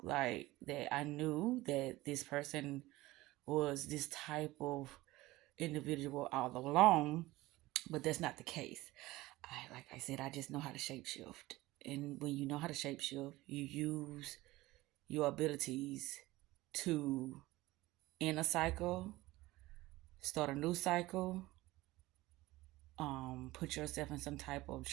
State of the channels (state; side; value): quieter; left; 18.8 dB